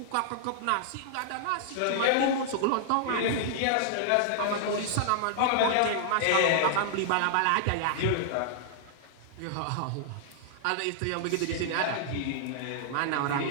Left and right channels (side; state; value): both; different; correlation -0.01